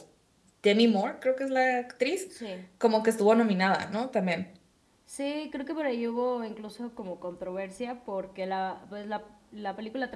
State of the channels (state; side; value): identical; both; correlation 1.00